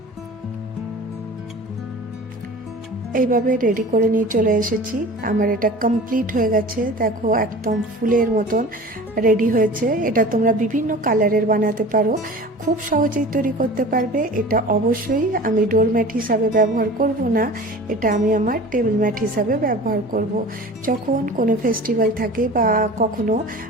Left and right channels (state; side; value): normal; both; correlation 0.39